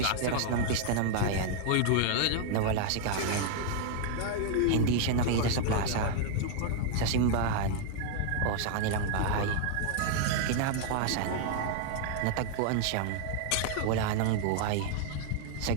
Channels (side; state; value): both; different; correlation 0.00